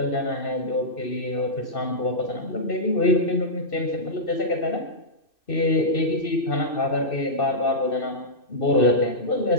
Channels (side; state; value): right; late; 2.6 ms